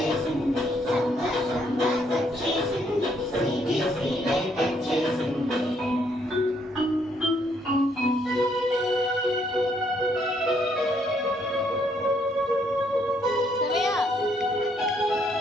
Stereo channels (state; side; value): normal; both; correlation 0.71